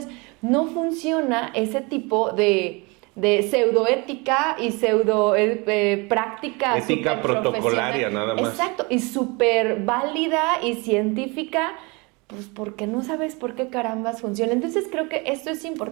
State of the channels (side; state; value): left; quieter; 27.8 dB